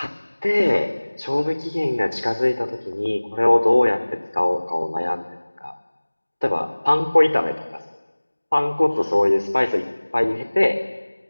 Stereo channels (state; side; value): inverted; both; correlation -1.00